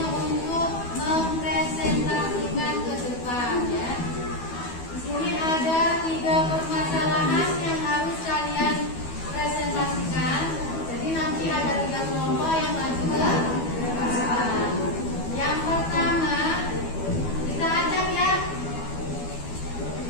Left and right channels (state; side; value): late; right; 12 ms